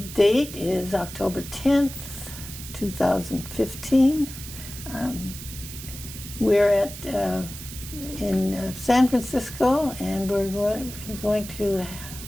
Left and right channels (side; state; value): right; noise; hiss, 12 dB below the sound